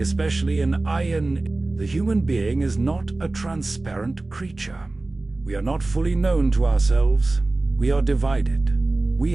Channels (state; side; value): quieter; left; 3.1 dB